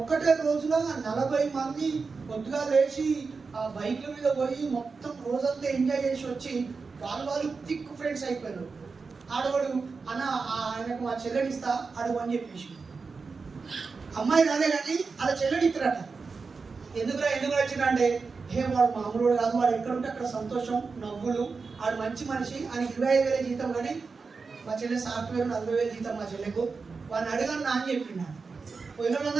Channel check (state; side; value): quieter; left; 4.6 dB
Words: రోజులో 40 మంది పొద్దుగా లేచి ఆ బైక్ల మీద పోయి మొత్తం రోజంతా ఎంజాయ్ చేసి వచ్చి వాళ్ళు థిక్ ఫ్రెండ్స్ అయిపోయారు. ఆడవాడు అన్న ఆయనకు మా చెల్లెనిస్తా అడుగు అని చెప్పేసి, అమ్మాయి రాలే కానీ అలా చెల్లెని ఇస్తారట. ఎందుకు వచ్చిన అంటే, వాడు మామూలు కాదు, వాడు ఎక్కడుంటే అక్కడ సంతోషం, నవ్వులు, వాడు మంచి మనిషి, ఆయన 25,000 జీతం, కానీ మా చెల్లె సాఫ్ట్వేర్ 40,000 జీతం మా చెల్లెకు. వాడిని అడగను నా అని చెప్పిండు. పోయిన